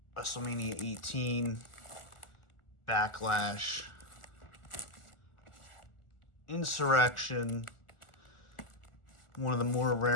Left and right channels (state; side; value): late; right; 1.4 ms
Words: WrestleMania 18, Backlash, Insurrection, one of the more